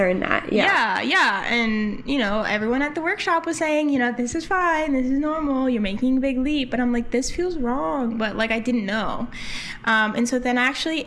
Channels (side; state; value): both; identical; correlation 1.00